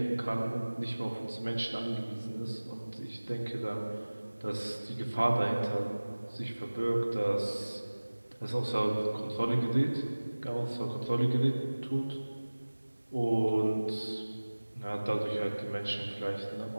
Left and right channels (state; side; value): inverted; both; correlation -1.00